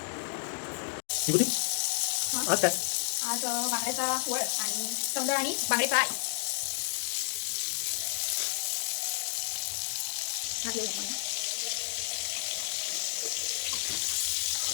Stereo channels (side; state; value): right; silent; digital silence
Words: विभूती आज काय? आज बांगड्याचा वळ आणि सौंदळ आणि बांगडे फ्राय.